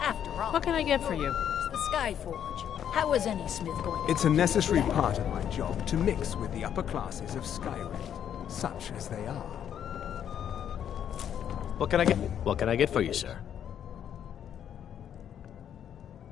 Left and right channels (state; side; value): quieter; right; 9.4 dB